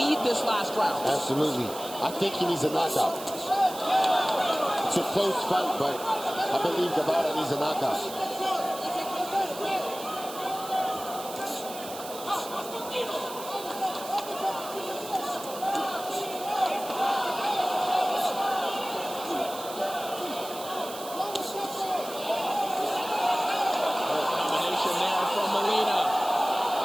this last round. Absolutely. I think he needs a knockout. It's a close fight, but I believe Guevara needs a knockout.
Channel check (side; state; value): right; noise; hiss, 13 dB below the sound